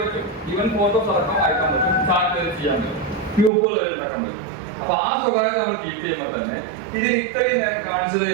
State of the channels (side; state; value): left; drops out; at 3.5 s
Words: ഈവൻ ഫോട്ടോസ് അടക്കം അയക്കാൻ പറ്റും, ചാറ്റ് വരെ ചെയ്യാൻ പറ്റും, ഗ്രൂപ്പുകൾ ഉണ്ടാക്കാൻ പറ്റും. അപ്പൊ ആ സ്വകാര്യത നമ്മൾ കീപ്പ് ചെയ്യുമ്പോൾ തന്നെ ഇതിന് ഇത്രയും നേരം കാണിച്ചത്